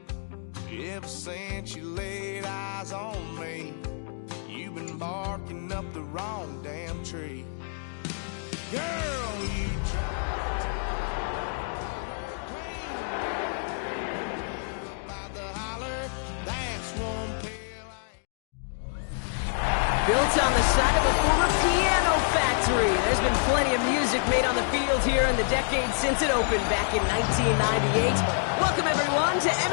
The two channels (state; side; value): silent; right; digital silence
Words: Ever since you laid eyes on me, you've been barking up the wrong damn tree. Girl, you tried to about the holler, that's one pill Built on the side of a former piano factory, there's been plenty of music made on the field here in the decade since it opened back in 1998. Welcome everyone to